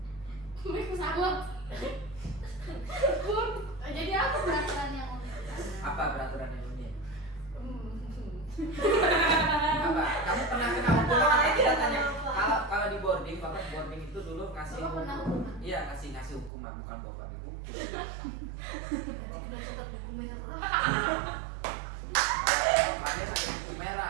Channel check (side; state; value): left; drops out; at 16.5 s